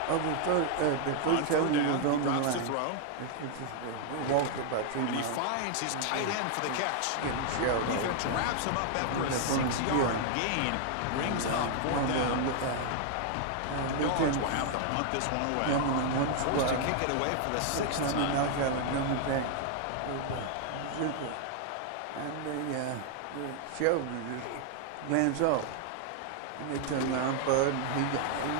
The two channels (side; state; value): both; different; correlation 0.00